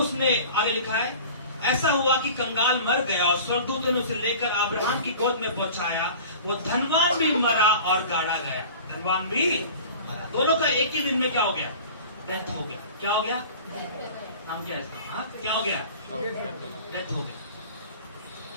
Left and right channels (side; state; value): both; inverted; correlation -0.41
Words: उसने आगे लिखा है, ऐसा हुआ कि कंगाल मर गया और स्वर्गदूतों ने उसे लेकर अब्राहम की गोद में पहुंचाया। वो धनवान भी मरा और गाड़ा गया। धनवान भी मरा, दोनों का एक ही दिन में क्या हो गया, डेथ हो गया। क्या हो गया, नाम क्या है इसका, हाँ क्या हो गया, डेथ हो गया।